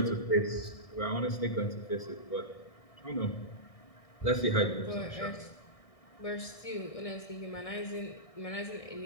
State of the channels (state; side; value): late; right; 1.6 ms